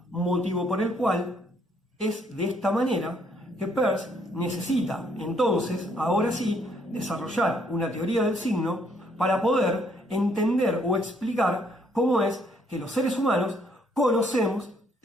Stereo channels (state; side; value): normal; both; correlation 0.68